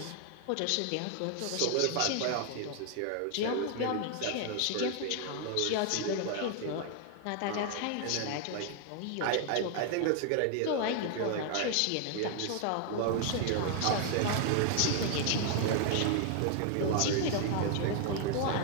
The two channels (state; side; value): different; both; correlation 0.00